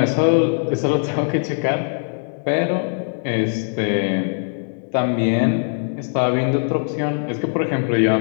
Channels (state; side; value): silent; right; 65 dB below the other